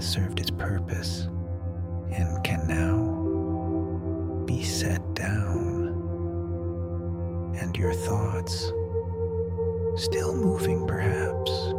served its purpose and can now be set down, and your thoughts still moving perhaps,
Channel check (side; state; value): both; identical; correlation 1.00